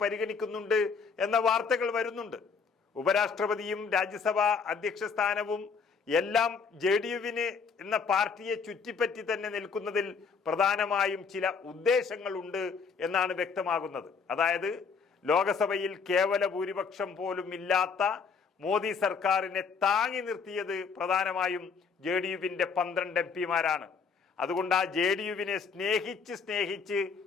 പരിഗണിക്കുന്നുണ്ട് എന്ന വാർത്തകൾ വരുന്നുണ്ട്. ഉപരാഷ്ട്രപതിയും രാജ്യസഭാ അധ്യക്ഷ സ്ഥാനവും എല്ലാം JDUവിന് എന്ന പാർട്ടിയെ ചുറ്റിപ്പറ്റി തന്നെ നിൽക്കുന്നതിൽ പ്രധാനമായും ചില ഉദ്ദേശങ്ങളുണ്ട് എന്നാണ് വ്യക്തമാകുന്നത്. അതായത് ലോകസഭയിൽ കേവല ഭൂരിപക്ഷം പോലും ഇല്ലാത്ത മോദി സർക്കാരിനെ താങ്ങി നിർത്തിയത് പ്രധാനമായും JDUവിന്റെ 12 MP-മാരാണ്. അതുകൊണ്ട് ആ JDUവിനെ സ്നേഹിച്ച്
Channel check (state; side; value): quieter; right; 5.5 dB